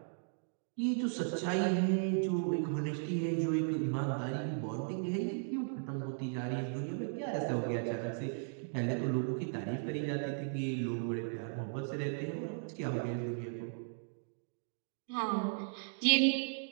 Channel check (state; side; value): silent; left; digital silence